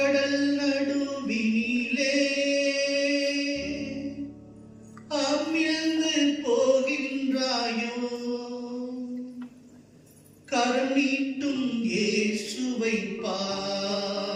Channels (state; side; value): identical; both; correlation 1.00